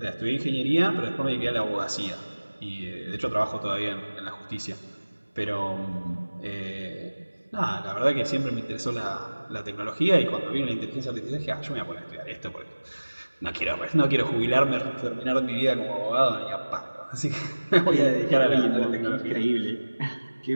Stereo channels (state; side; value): inverted; both; correlation -1.00